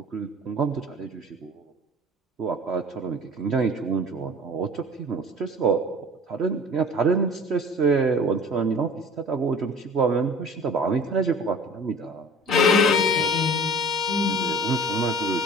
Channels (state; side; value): normal; both; correlation 0.43